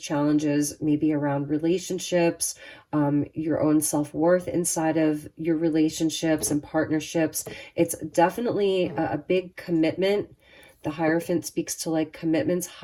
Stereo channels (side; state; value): both; identical; correlation 1.00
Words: maybe around relationships, your own self-worth inside of your relationships and partnerships. It's definitely a big commitment. The Hierophant speaks to like commitments,